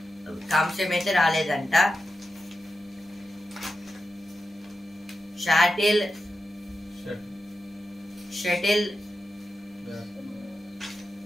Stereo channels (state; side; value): normal; both; correlation 0.90